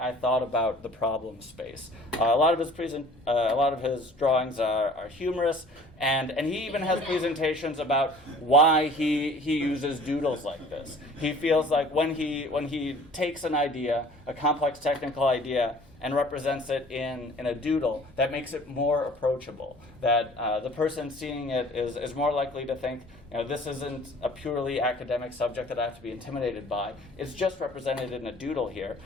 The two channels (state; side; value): normal; both; correlation 0.49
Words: thought about the problem space. A lot of his drawings are humorous, and he even has presentations about why he uses doodles like this. He feels like when he takes an idea, a complex technical idea, and represents it in a doodle, that makes it more approachable. That the person seeing it is more likely to think, this isn't a purely academic subject that I have to be intimidated by. It's just represented in a doodle here.